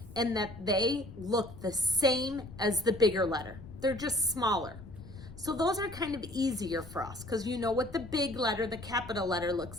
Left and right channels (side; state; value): left; noise; rumble, 16 dB below the sound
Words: and that they look the same as the bigger letter. They're just smaller. So those are kind of easier for us because you know what the big letter, the capital letter